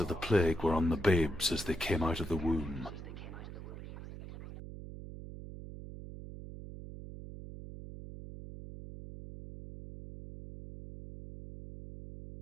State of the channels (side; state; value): right; noise; hum, 11 dB below the sound